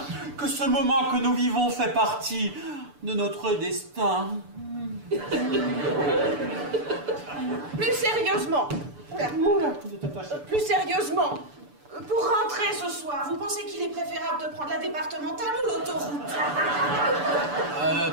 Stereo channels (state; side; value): late; left; 6.9 ms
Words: que ce moment que nous vivons fait partie de notre destin. Plus sérieusement. Plus sérieusement. Pour rentrer ce soir, vous pensez qu'il est préférable de prendre la départementale ou l'autoroute?